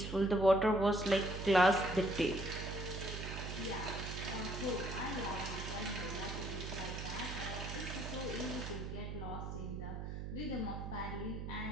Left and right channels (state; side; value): noise; right; hum, 6 dB below the sound